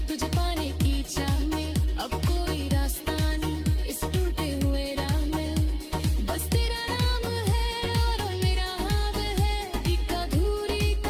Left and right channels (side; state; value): both; identical; correlation 1.00